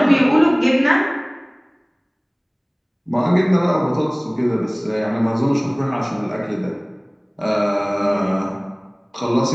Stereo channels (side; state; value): both; identical; correlation 1.00